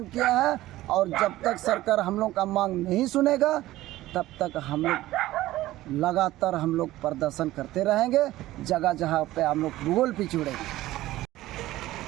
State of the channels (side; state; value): left; quieter; 16.1 dB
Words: किया है। और जब तक सरकार हम लोग का मांग नहीं सुनेगा तब तक हम लोग लगातार हम लोग प्रदर्शन करते रहेंगे। जगह जगह पे हम लोग भूगोल पिछड़ेंगे।